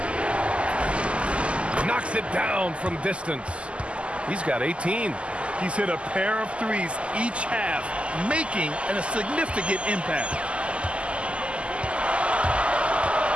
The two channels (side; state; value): left; late; 0.055 ms